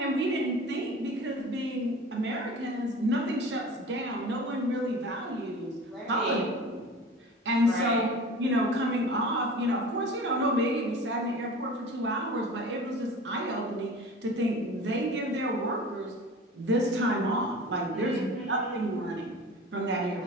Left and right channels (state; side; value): normal; both; correlation 0.38